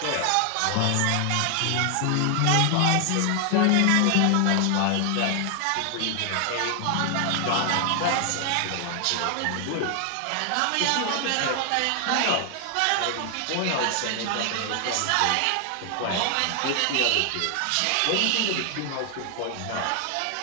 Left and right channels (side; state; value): both; different; correlation 0.00